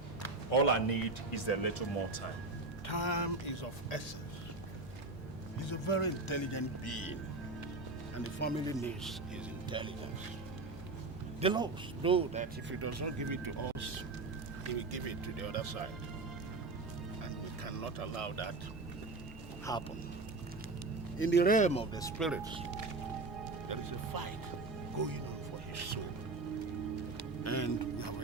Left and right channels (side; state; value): left; quieter; 3.4 dB